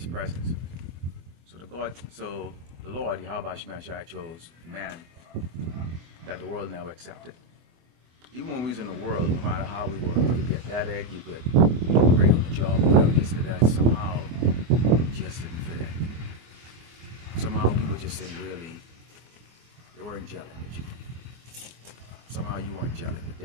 presence." So the Lord, Yahweh Shai, chose man that the world never accepted. Even when we was in the world, no matter how we were, you could be athletic, you could do great on the job, whatever it is, that somehow we just didn't fit in. Somehow people just didn't really, they weren't gelling with you. Somehow you weren't gelling with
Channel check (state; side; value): late; left; 24 ms